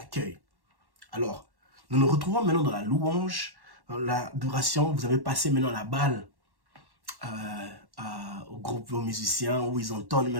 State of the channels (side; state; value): left; late; 1.1 ms